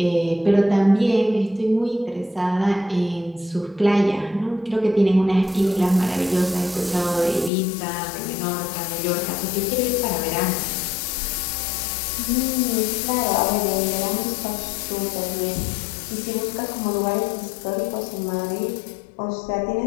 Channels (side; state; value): right; drops out; at 7.5 s